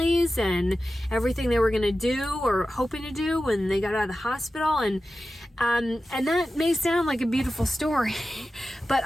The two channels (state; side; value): normal; both; correlation 0.93